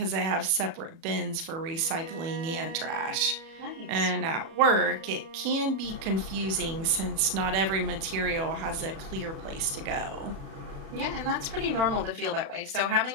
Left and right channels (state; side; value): late; left; 37 ms